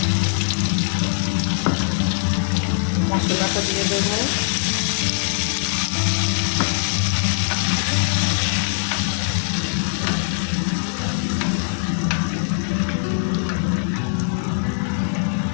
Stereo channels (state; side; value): silent; right; digital silence